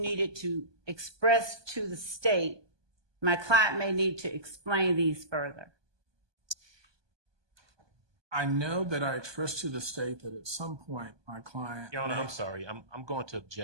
needed to express to the state, my client may need to explain these further? I know that I expressed to the state that at some point my client... Your Honor, I'm sorry. I'm going to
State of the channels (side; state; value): left; late; 1.2 ms